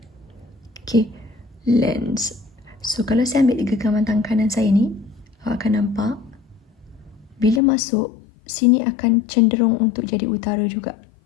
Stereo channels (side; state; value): right; drops out; at 7.6 s